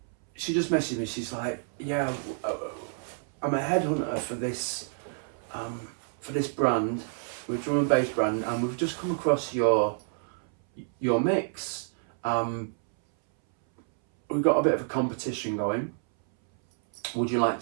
she just messaged me. She's like, yeah, I'm a headhunter for this brand. we're a drum and bass brand, and we've just come across your mix. We've got a bit of a competition going. Would you like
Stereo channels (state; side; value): silent; left; 59 dB below the other